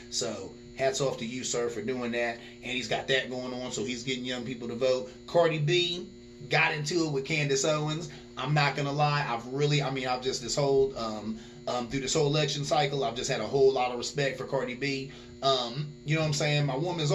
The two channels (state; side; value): identical; both; correlation 1.00